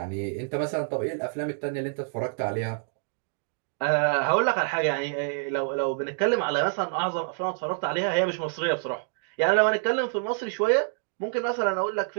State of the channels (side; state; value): left; silent; digital silence